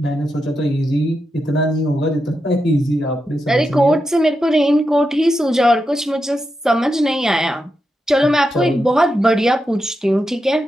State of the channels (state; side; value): normal; both; correlation 0.87